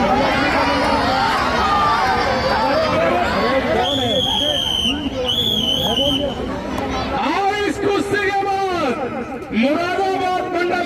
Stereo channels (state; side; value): identical; both; correlation 1.00